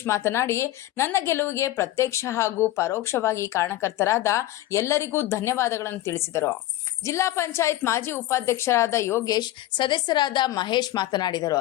ಮಾತನಾಡಿ, ನನ್ನ ಗೆಲುವಿಗೆ ಪ್ರತ್ಯಕ್ಷ ಹಾಗೂ ಪರೋಕ್ಷವಾಗಿ ಕಾರಣಕರ್ತರಾದ ಎಲ್ಲರಿಗೂ ಧನ್ಯವಾದಗಳನ್ನು ತಿಳಿಸಿದರು. ಜಿಲ್ಲಾ ಪಂಚಾಯತ್ ಮಾಜಿ ಉಪಾಧ್ಯಕ್ಷರಾದ ಯೋಗೇಶ್, ಸದಸ್ಯರಾದ ಮಹೇಶ್ ಮಾತನಾಡಿದರು.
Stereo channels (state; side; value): quieter; right; 15.0 dB